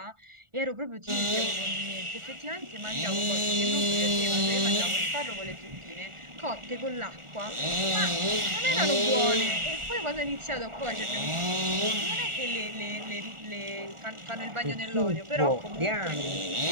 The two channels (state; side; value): late; left; 1.4 ms